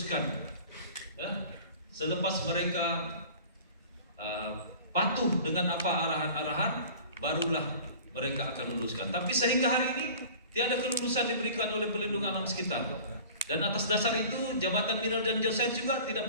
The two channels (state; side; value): inverted; both; correlation -0.43